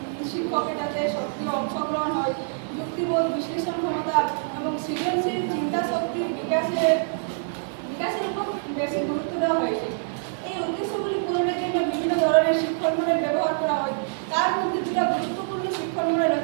শিক্ষকের যাতে সক্রিয় অংশগ্রহণ হয়, যুক্তিবোধ, বিশ্লেষণ ক্ষমতা এবং সৃজনশীল চিন্তা শক্তির বিকাশের উপর বেশি গুরুত্ব দেওয়া হয়েছে। এই উদ্দেশ্যগুলি পূরণের জন্য বিভিন্ন ধরনের শিক্ষণ মডেল ব্যবহার করা হয়। তার মধ্যে দুটো গুরুত্বপূর্ণ শিক্ষণ মডেল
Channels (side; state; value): left; silent; digital silence